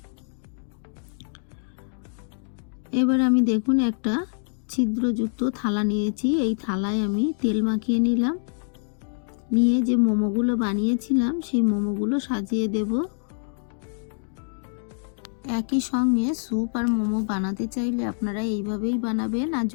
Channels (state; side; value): silent; right; digital silence